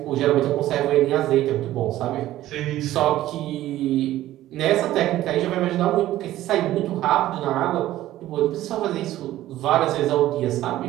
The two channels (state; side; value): quieter; left; 14.5 dB